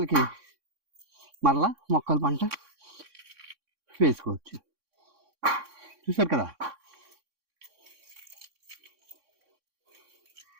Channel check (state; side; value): late; left; 3.6 ms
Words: మరలా మొక్కల పంట వేసుకోవచ్చు. చూసారు కదా,